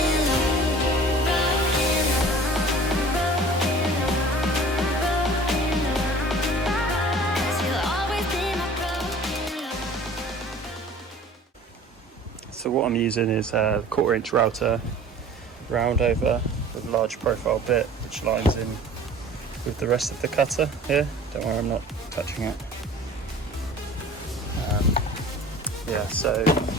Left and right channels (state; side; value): normal; both; correlation 0.45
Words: love, broken love. 'Cause you'll always be my broken love. So what I'm using is a 1/4" router, round over with a large profile bit, which lines in with the rest of the cutter here. Don't worry, I'm not touching it. Yeah, so